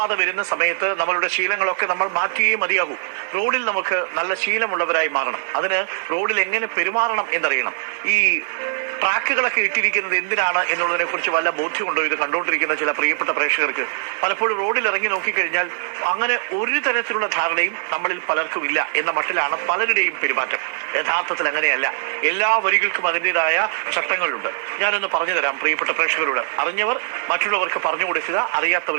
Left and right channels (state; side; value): silent; left; digital silence